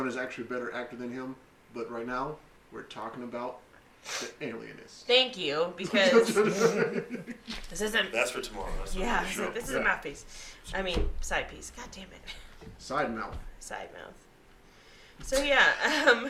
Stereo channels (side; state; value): both; identical; correlation 1.00